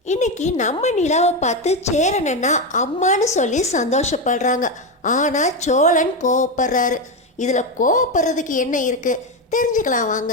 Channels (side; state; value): both; normal; correlation 0.11